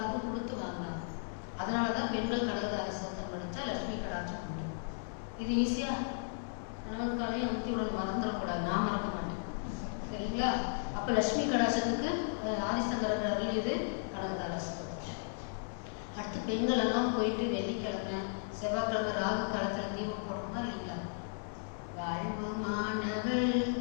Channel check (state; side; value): silent; right; digital silence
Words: கொடுத்து வாங்கினாங்க. அதனாலதான் பெண்கள் கனகதார சோத்திரம் படிச்சா லட்சுமி கடாட்சம் முடியும். இது ஈஸியா கணவன்காரையும் அமுத்தி உடனே மறந்துடக்கூடாது, நான் மறக்க மாட்டேன் சரிங்களா. அப்ப லட்சுமி கடாட்சத்துக்கு ஆதிசங்கரர் அருளியது கனகதார சோத்திரம். அடுத்து பெண்கள் எல்லாம் போயிட்டு வெள்ளிக்கிழமை செவ்வாய்க்கிழமை ராகு காலத்துல தீபம் போடுறோமா இல்லைங்களா. வாழ்வுமானவள்